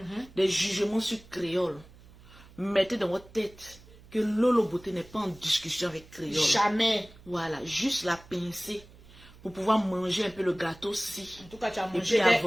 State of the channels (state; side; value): noise; right; hum, 23 dB below the sound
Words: Des jugements sur créole. Mettez dans votre tête que Lolo Beauté n'est pas en discussion avec créole. Jamais. Voilà, juste la pincer pour pouvoir manger un peu le gâteau si. En tout cas, tu as Et mangé. puis